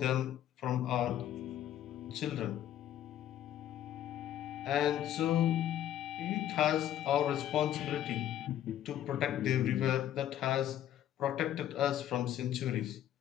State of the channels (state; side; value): quieter; right; 11.6 dB